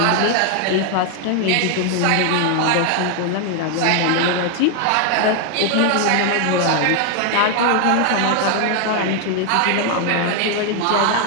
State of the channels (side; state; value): both; different; correlation 0.01